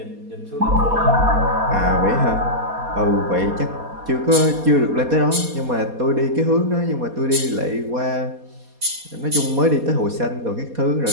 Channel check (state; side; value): late; left; 4.2 ms